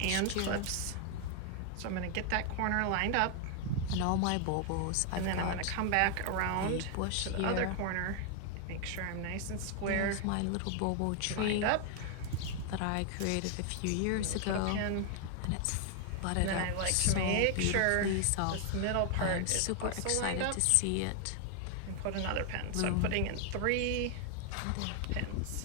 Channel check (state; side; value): different; both; correlation 0.00